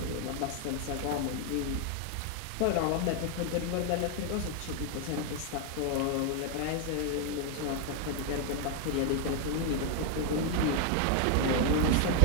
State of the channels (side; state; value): both; different; correlation 0.01